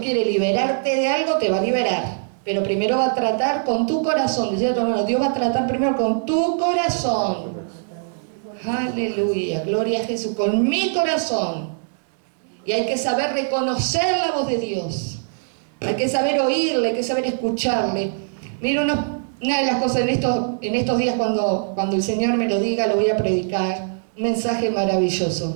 liberarte de algo, te va a liberar. Pero primero va a tratar con tu corazón. Decía tu hermano, Dios va a tratar primero con tu corazón. Aleluya, gloria a Jesús, con mi corazón. Y hay que saber reconocer la voz de Dios. Hay que saber oírle, hay que saber escucharle. Mira, una de las cosas en estos días cuando el Señor me lo diga, lo voy a predicar. Un mensaje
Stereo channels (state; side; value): silent; left; digital silence